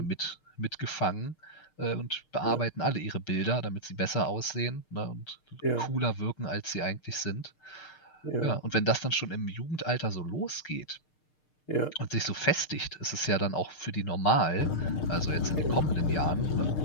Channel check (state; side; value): late; right; 6.6 ms